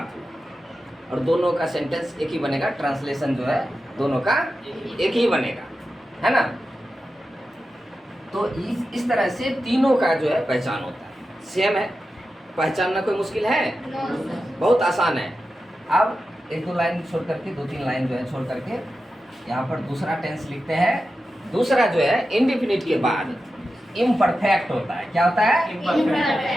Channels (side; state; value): both; normal; correlation 0.91